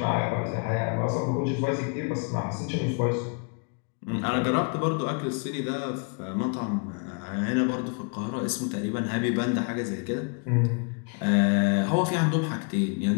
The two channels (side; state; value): right; quieter; 38.1 dB